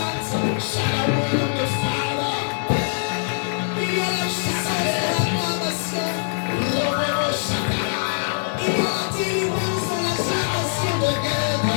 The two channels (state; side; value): silent; right; digital silence